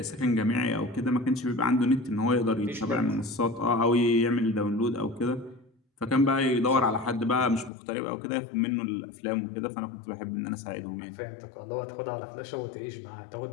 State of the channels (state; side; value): drops out; right; at 7.7 s